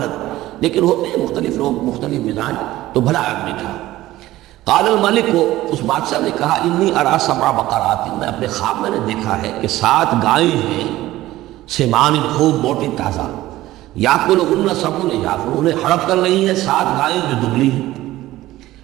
لیکن ہوتے ہیں مختلف لوگ، مختلف مزاج، تو بھلا آدمی تھا. قال الملک کو، اس بادشاہ نے کہا، انی ارا سبع بقرات، میں اپنے خواب میں نے دیکھا ہے کہ 7 گائیں ہیں، سمان خوب موٹی تازہ، یاکلہن سبع عجاف، انہیں ہڑپ کر رہی ہیں 7 گائیں جو دبلی ہیں.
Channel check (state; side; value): quieter; left; 16.1 dB